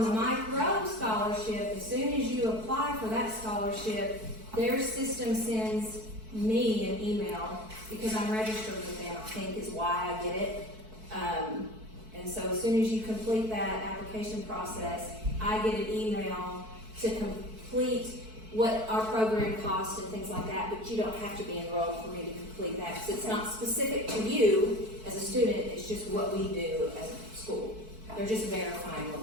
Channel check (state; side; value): late; left; 4.6 ms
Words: the Mike Rowe scholarship, as soon as you apply for that scholarship, their system sends me an email, because I'm registered with them, I think is why I get it. And so as soon as you complete that application process, I get an email to complete what our program costs and things like that, but you don't have to be enrolled for me to complete that, because it's not specific to you as a student, it's just what we do as a school. They're just verifying what